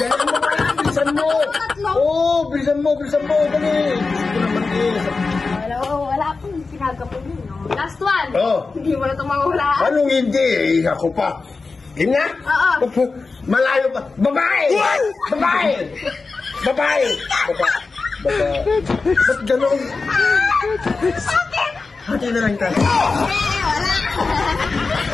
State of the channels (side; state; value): right; quieter; 4.1 dB